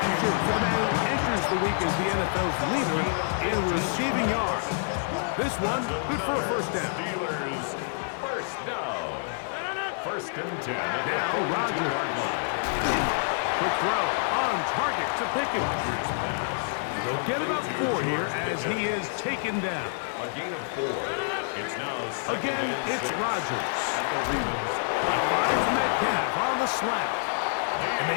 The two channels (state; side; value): silent; right; 60 dB below the other